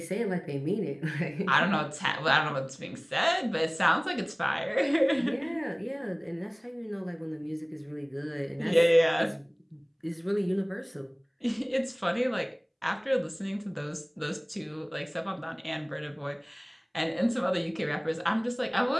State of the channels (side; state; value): both; identical; correlation 1.00